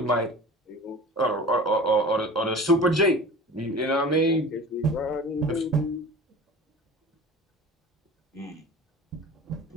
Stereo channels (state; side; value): normal; both; correlation 0.39